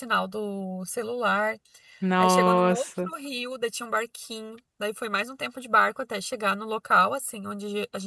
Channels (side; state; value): both; identical; correlation 1.00